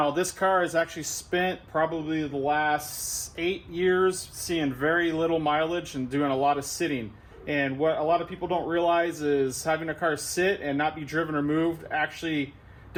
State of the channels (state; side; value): identical; both; correlation 1.00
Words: this car has actually spent probably the last 8 years seeing very little mileage and doing a lot of sitting. And what a lot of people don't realize is having a car sit and not be driven or moved actually